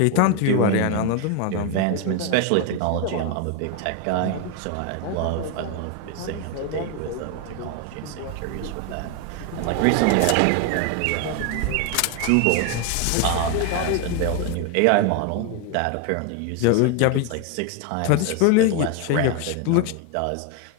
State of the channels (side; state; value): both; different; correlation 0.01